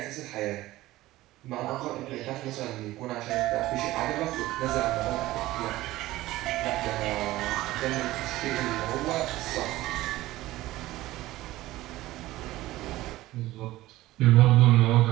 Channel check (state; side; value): quieter; left; 16.9 dB